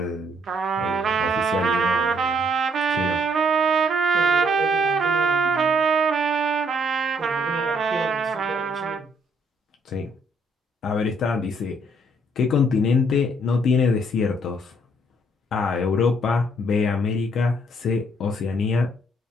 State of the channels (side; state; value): both; normal; correlation 0.67